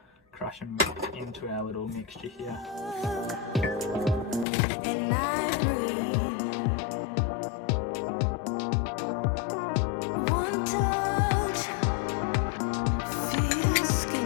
crush them into our little mixture here. And I breathe. One touch feels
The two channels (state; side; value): drops out; right; at 4.5 s